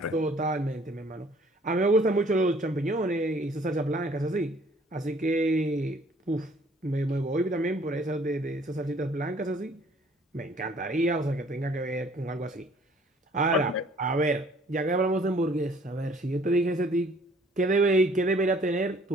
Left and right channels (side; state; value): both; normal; correlation 0.58